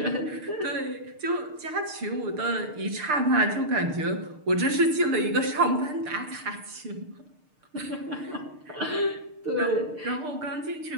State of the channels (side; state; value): left; late; 6.6 ms